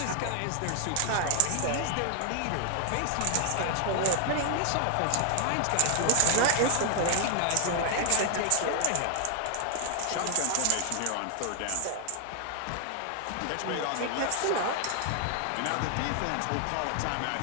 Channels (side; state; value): both; different; correlation 0.00